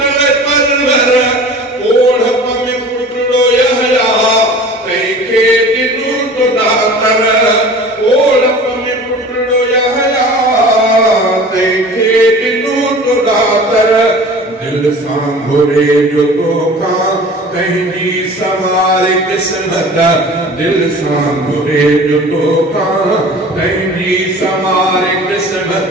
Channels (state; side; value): normal; both; correlation 0.41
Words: परवर ओढ़प में पुटड़ो यहया तैखे दिनु तो दातर ओढ़प में पुटड़ो यहया तैखे दिनु तो दातर दिल सांभुरे जो तोखा कहीं सवार किस्मत दिल सांभुरे जो तोखा कहीं सवार